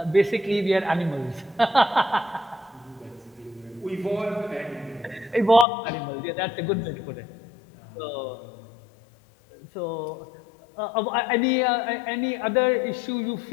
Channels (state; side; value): drops out; right; at 5.7 s